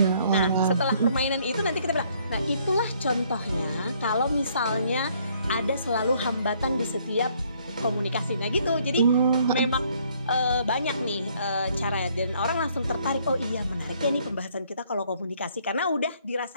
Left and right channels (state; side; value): inverted; both; correlation -0.65